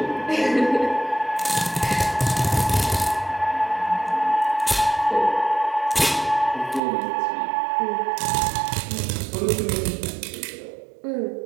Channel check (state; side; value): drops out; left; at 6.8 s